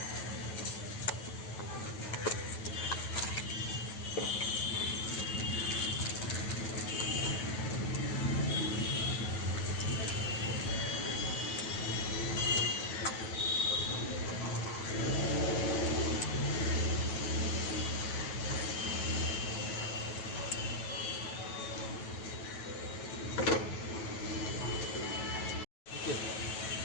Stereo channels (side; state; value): right; late; 9.2 ms